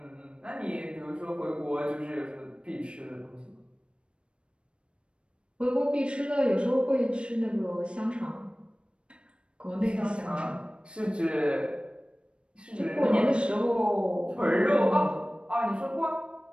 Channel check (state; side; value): late; left; 0.057 ms